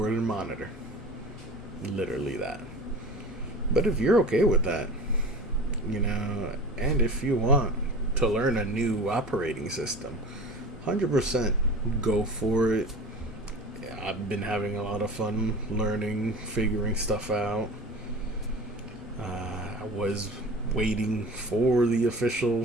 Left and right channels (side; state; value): both; normal; correlation 0.36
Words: and monitor. Literally that. But if you're okay with that, and if you want to learn a new operating system, 100% go for it. I've been having a lot of fun learning, figuring stuff out. I was waiting for the official